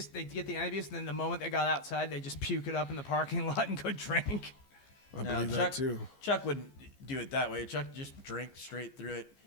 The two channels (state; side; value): late; right; 15 ms